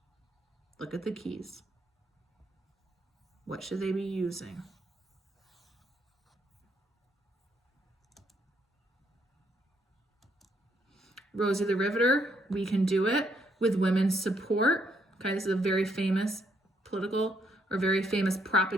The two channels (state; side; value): normal; both; correlation 0.72